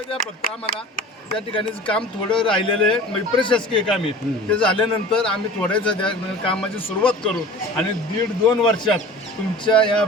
द्या फक्त आम्हाला. त्या ठिकाणी काम थोडं राहिलेलं आहे, म्हणजे प्रशासकीय काम आहे. ते झाल्यानंतर आम्ही थोड्याच कामाची सुरुवात करू आणि 1.5-2 वर्षात तुमच्या या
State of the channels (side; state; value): both; normal; correlation 0.40